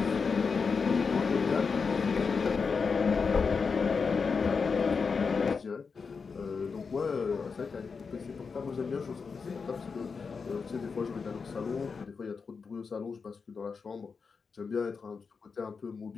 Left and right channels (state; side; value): quieter; right; 5.2 dB